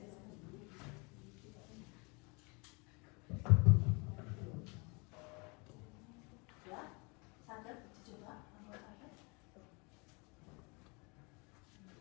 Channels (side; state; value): right; quieter; 29.8 dB